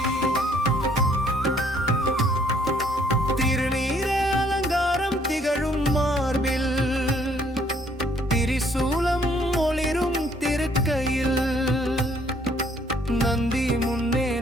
திருநீர அலங்காரம் திகழும் மார்பில் திரிசூலம் ஒளிரும் திருக்கையில் நந்தி முன்னே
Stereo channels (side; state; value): both; normal; correlation 0.64